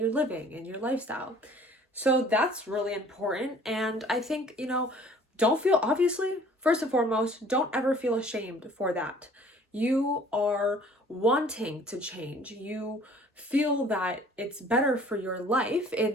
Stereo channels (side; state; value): both; normal; correlation 0.53